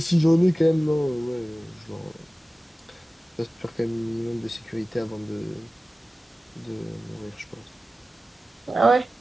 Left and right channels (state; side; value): normal; both; correlation 0.96